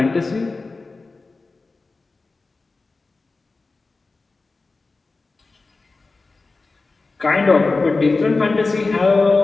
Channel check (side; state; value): right; quieter; 3.7 dB